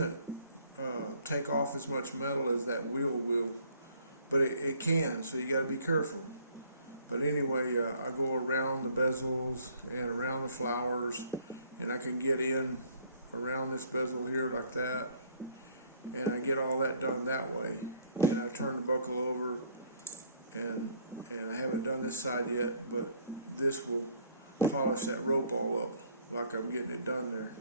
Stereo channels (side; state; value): both; inverted; correlation -0.60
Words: take off as much metal as that wheel will, but it can, so you got to be careful. But anyway, I go around the bezels and around the flowers, and I can get in around this bezel here like that, and I get all that done that way. And I turn the buckle over, and I haven't done this side yet, but this will polish that rope all up like I'm getting it done there.